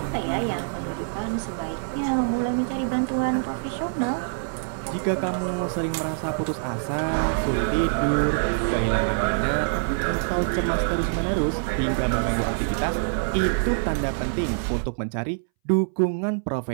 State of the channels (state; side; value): silent; left; 62 dB below the other